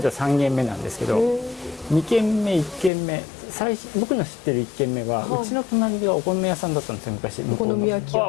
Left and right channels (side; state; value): right; drops out; at 2.9 s